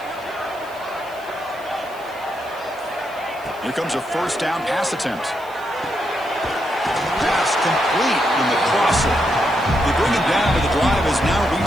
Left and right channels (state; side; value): noise; right; hiss, 24 dB below the sound